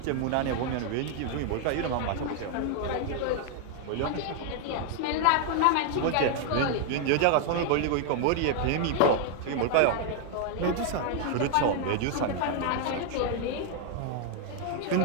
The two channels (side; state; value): both; different; correlation 0.00